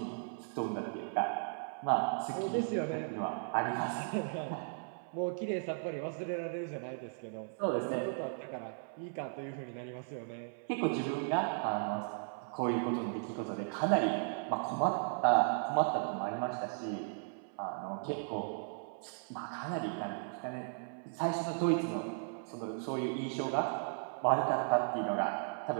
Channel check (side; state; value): left; silent; 54 dB below the other